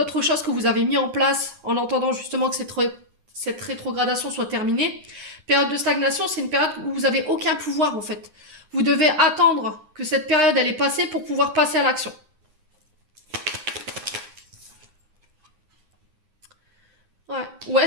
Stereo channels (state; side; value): late; left; 9.7 ms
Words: choses que vous avez mis en place en entendant justement que cette rétrogradation soit terminée. Période de stagnation, c'est une période où vous n'avez aucun pouvoir en fait. Vous devez attendre que cette période elle est passée pour pouvoir passer à l'action. Ouais. Ou